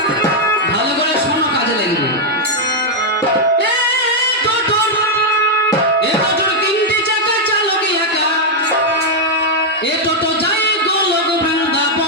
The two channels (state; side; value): normal; both; correlation -0.01